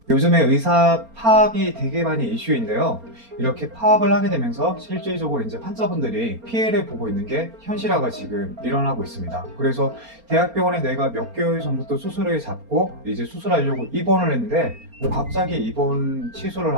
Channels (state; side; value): late; left; 4.3 ms